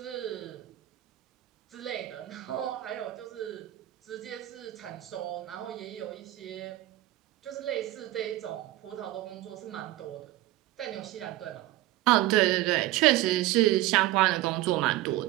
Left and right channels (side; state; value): left; quieter; 16.4 dB